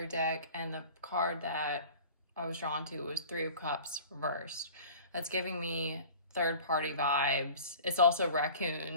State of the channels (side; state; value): both; inverted; correlation -0.43